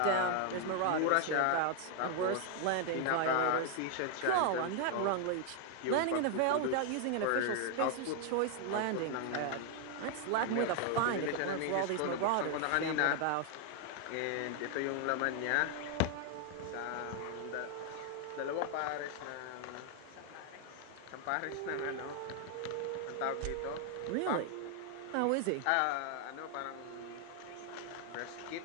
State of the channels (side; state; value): both; different; correlation 0.00